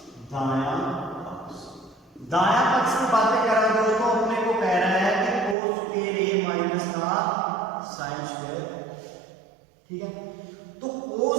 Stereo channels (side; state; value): left; drops out; at 5.6 s